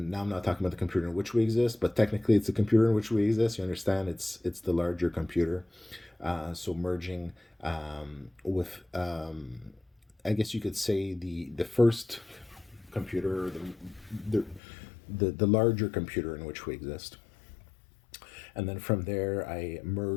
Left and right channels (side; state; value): right; drops out; at 14.6 s